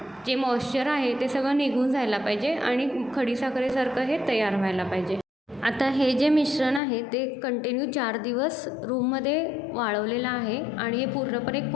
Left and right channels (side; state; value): right; drops out; at 6.8 s